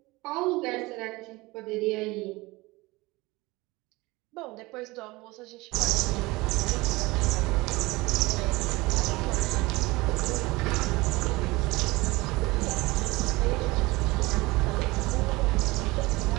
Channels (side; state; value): left; quieter; 21.9 dB